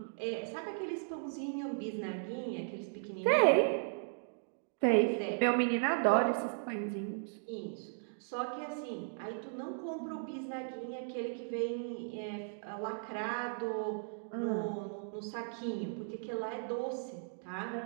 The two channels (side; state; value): left; silent; digital silence